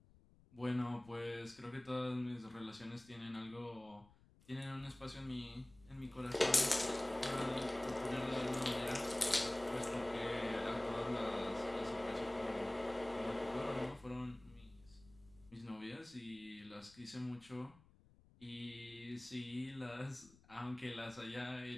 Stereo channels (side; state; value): left; noise; rumble, 26 dB below the sound